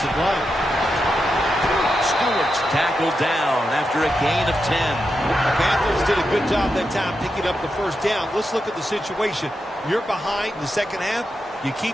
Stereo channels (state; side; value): normal; both; correlation 0.87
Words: line. Stewart's tackled down after a gain of 10. The Panthers did a good job that time picking up the first down. Let's look at the situation. You're behind in the second half. You